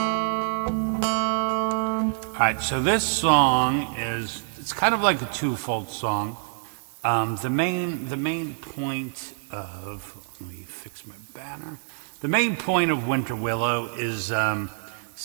All right, so this song it's kind of like a twofold song. The main point of, let me fix my banner. The main point of Winter Willow is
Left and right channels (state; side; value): silent; left; digital silence